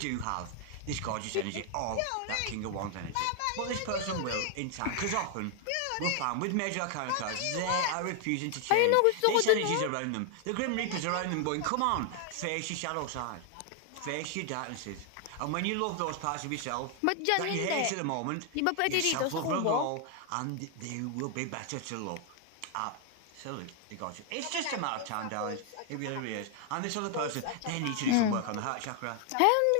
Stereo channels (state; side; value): different; both; correlation 0.00